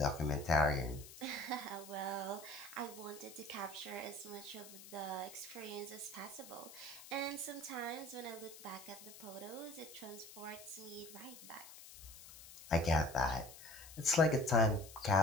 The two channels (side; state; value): left; noise; hiss, 16 dB below the sound